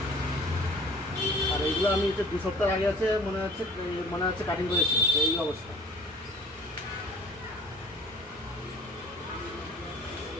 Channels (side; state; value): both; normal; correlation 0.48